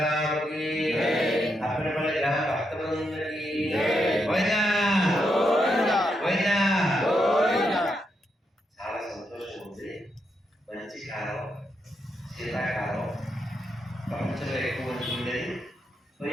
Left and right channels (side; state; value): both; normal; correlation 0.81